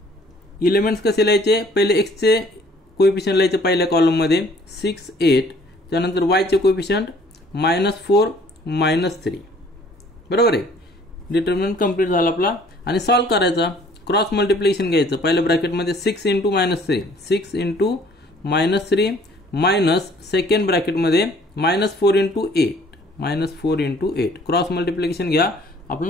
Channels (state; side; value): normal; both; correlation 0.57